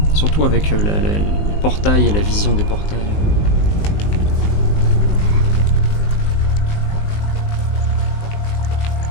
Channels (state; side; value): late; right; 19 ms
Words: Surtout avec les portails et la vision des portails.